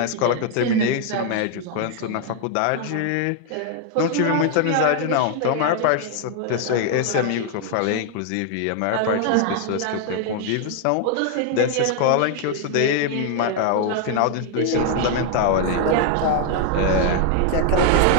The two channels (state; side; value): different; both; correlation 0.00